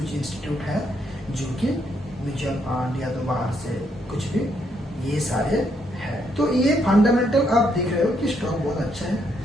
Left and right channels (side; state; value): both; normal; correlation 0.74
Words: इंस्टीट्यूट है जो कि म्यूचुअल फंड या तो बाहर से कुछ भी, ये सारे है। तो ये फंडामेंटल आप देख रहे हो कि स्टॉक बहुत अच्छा है।